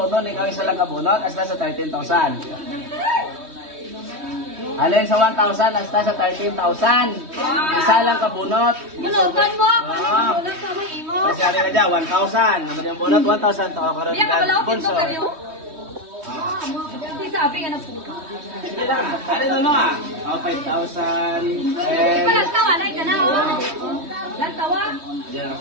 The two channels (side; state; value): left; late; 3.2 ms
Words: nun, ikaw isa lang kabunot, hasta sa 13,000. Alin sa 1,000, hasta sa 13,000. Isa lang kabunot. Bunutan mo! Ah. Bunutan sa mga imo! Kasi sabi ka dyan, 1,000. Naman yung bunot, 1,000. Ito ako karoon Hindi ako wala ko sponsor. kayo. Hindi sabi nga ng puto. Hindi lang. Ano no ah? Oh, 5,000. Di pa lang tawa na ika na oh. Lang tawa. Diyan ako